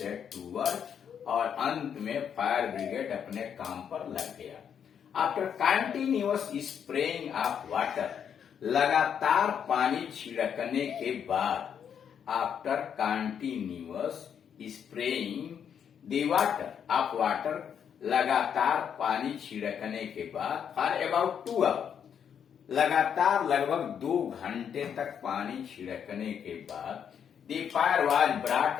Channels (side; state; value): right; quieter; 8.1 dB